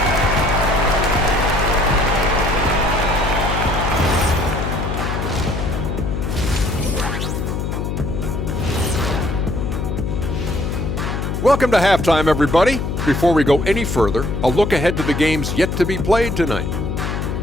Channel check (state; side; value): noise; left; hum, 2 dB below the sound